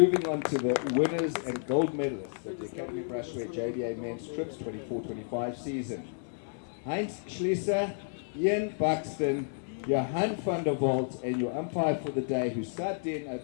on to the winners and gold medalists of the Academy Brushware JBA Men's Trips 24-25 season. Heinz Schlieser, Ian Buxton, Johan van der Walt, and your umpire for the day who sat in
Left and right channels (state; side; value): silent; right; digital silence